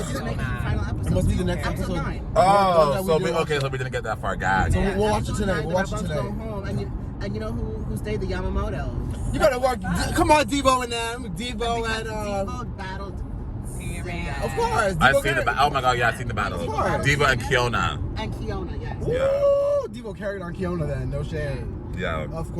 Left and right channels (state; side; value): identical; both; correlation 1.00